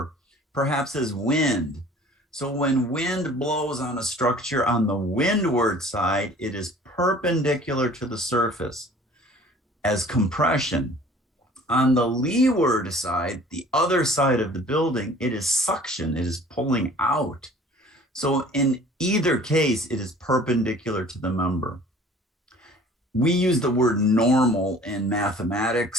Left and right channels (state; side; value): normal; both; correlation 0.49